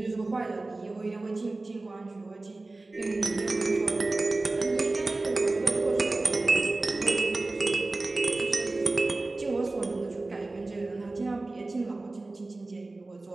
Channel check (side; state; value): left; quieter; 3.1 dB